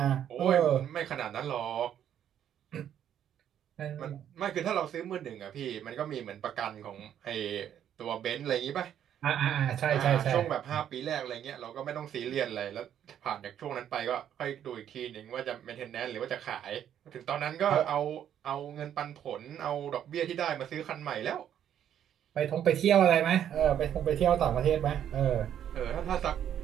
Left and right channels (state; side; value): quieter; left; 9.9 dB